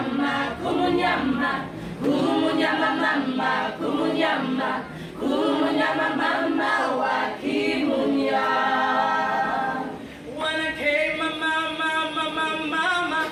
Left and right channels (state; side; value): identical; both; correlation 1.00